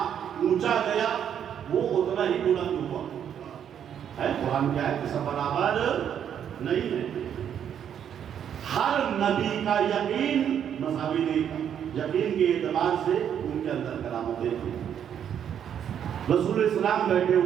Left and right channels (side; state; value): left; quieter; 8.9 dB